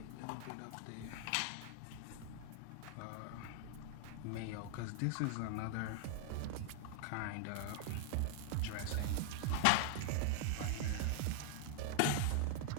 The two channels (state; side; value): different; both; correlation 0.00